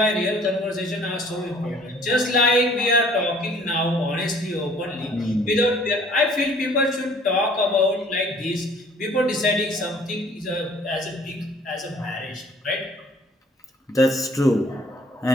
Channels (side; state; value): both; normal; correlation 0.55